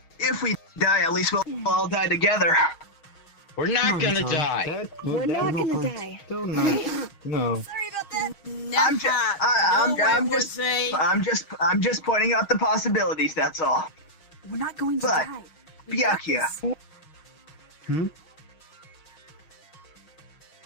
If we die, at least we'll all die together. We're not gonna die. We're not gonna die. Don't know. No. Sorry about that. I'm just pointing out the possibilities. That's all. We're not going to But, die. Byakuya.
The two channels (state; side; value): late; right; 6.3 ms